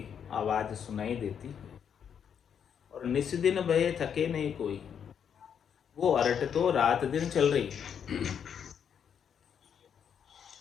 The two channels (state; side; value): quieter; right; 7.9 dB